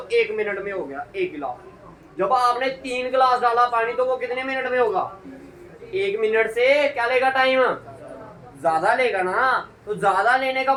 1 मिनट में हो गया 1 गिलास। जब आपने 3 गिलास डाला पानी तो वो कितने मिनट में होगा, 1 मिनट से क्या लेगा टाइम, ज्यादा लेगा ना। तो ज्यादा लेने का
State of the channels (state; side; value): identical; both; correlation 1.00